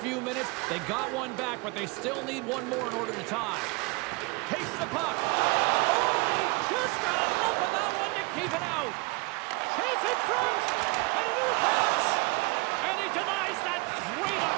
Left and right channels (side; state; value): left; quieter; 27.0 dB